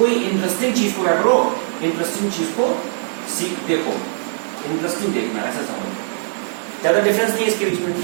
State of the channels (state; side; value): silent; left; digital silence